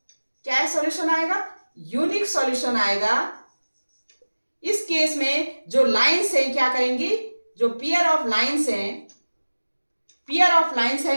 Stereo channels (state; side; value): inverted; both; correlation -1.00